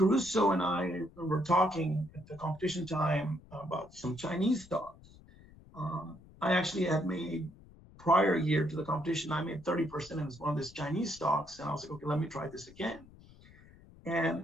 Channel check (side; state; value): left; noise; rumble, 23 dB below the sound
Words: and I were talking at the competition time about some Chinese stocks. I actually had made prior year to the competition, I made 30% in one of these Chinese stocks. And I was like, okay, let me try this again. And